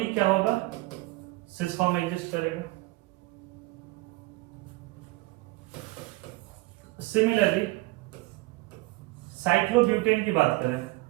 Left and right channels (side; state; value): left; quieter; 21.1 dB